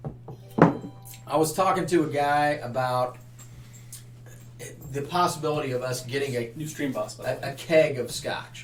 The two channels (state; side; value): identical; both; correlation 1.00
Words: I was talking to a guy about the possibility of us getting New stream boss. a keg of scotch,